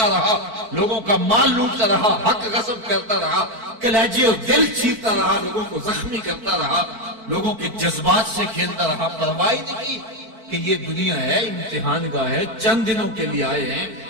رہا، لوگوں کا مال لوٹتا رہا، حق غصب کرتا رہا، کلیجے اور دل چیرتا رہا، لوگوں کو زخمی کرتا رہا، لوگوں کے جذبات سے کھیلتا رہا، پرواہ نہیں کی کہ یہ دنیا ہے، امتحان گاہ ہے، چند دنوں کے لیے آئے ہیں،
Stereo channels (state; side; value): late; left; 4.5 ms